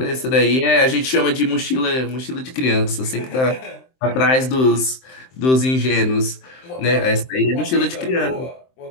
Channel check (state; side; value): late; right; 23 ms